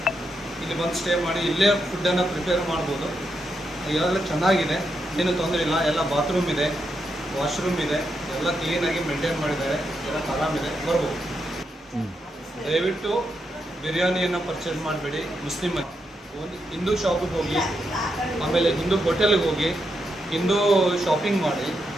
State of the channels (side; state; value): both; normal; correlation 0.83